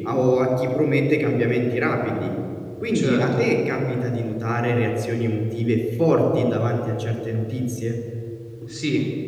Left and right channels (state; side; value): identical; both; correlation 1.00